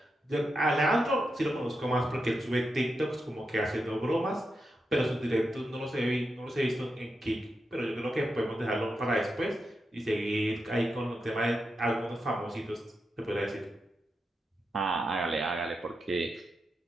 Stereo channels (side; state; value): both; normal; correlation 0.87